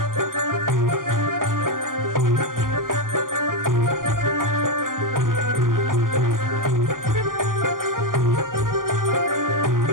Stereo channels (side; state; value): left; late; 0.90 ms